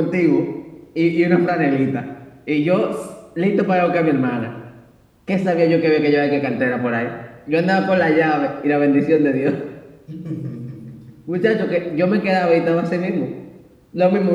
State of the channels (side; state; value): both; identical; correlation 1.00